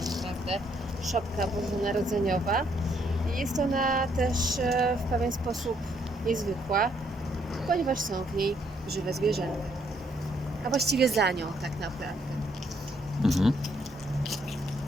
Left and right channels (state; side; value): normal; both; correlation 0.71